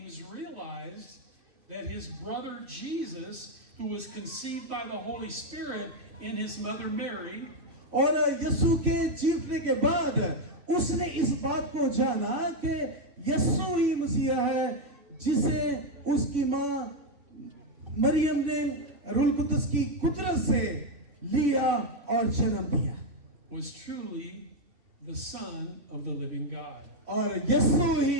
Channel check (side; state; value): left; late; 2.9 ms